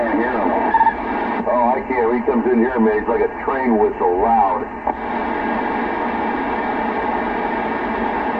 hear him. Oh, I can't. He comes comes in here, man, it's like a train whistle, loud.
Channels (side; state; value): both; identical; correlation 1.00